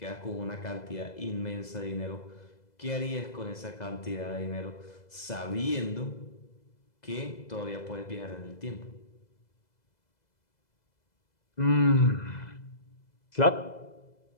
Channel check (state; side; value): late; right; 2.0 ms